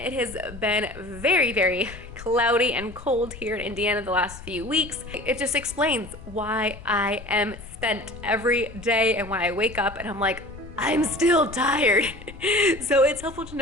has been very, very cloudy and cold here in Indiana the last few weeks. It just explains why I am spent every day and why I wake up and I'm like, I'm still tired. So it's helpful to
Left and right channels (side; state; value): left; noise; rumble, 15 dB below the sound